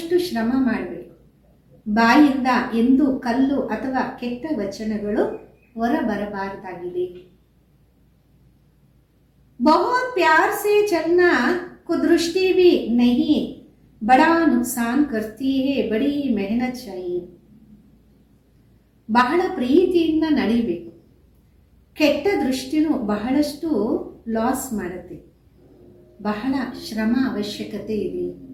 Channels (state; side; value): identical; both; correlation 1.00